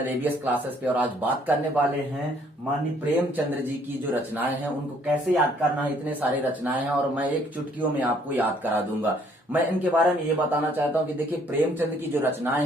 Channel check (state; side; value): normal; both; correlation 0.63